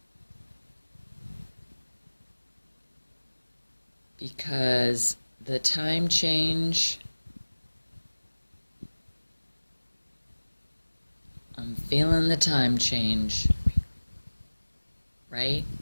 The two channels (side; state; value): both; inverted; correlation -1.00